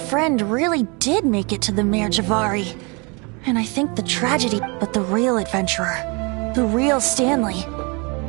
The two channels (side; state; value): left; quieter; 30.5 dB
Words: really did make it to the Mare Javari. And I think the tragedy, but the real adventurer, the real Stanley,